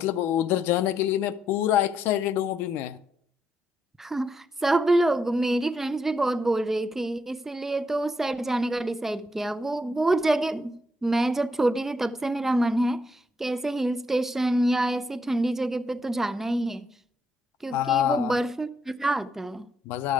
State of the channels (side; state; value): both; normal; correlation 0.77